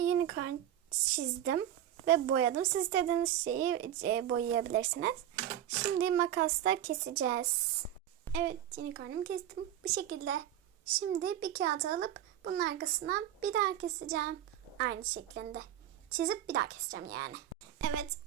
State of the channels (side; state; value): left; quieter; 11.5 dB